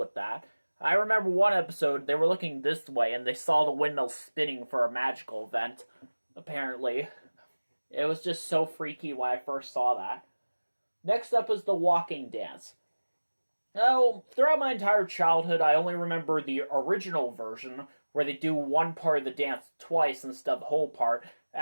that. I remember one episode, they were looking this way, and they saw the windmill spinning for a magical event, apparently. It was just so freaky when I first saw that. Next up is the walking dance. Now, throughout my entire childhood, I only remember the original version, where they do one part of the dance twice instead of the whole part.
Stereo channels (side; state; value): both; inverted; correlation -1.00